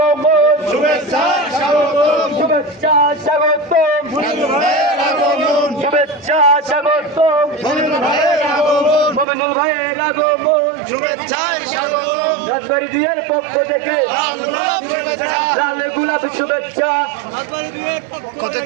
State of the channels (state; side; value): drops out; left; at 9.2 s